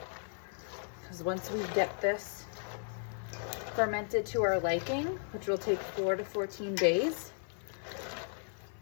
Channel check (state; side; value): silent; right; digital silence